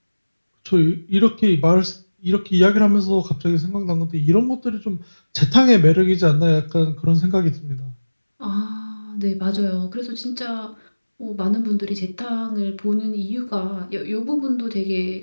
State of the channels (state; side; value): inverted; both; correlation -1.00